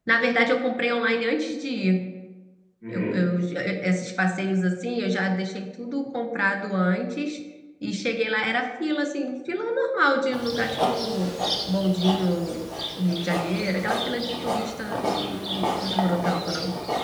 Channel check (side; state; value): both; identical; correlation 1.00